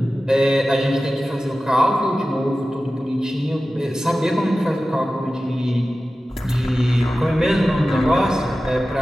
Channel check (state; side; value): normal; both; correlation 0.95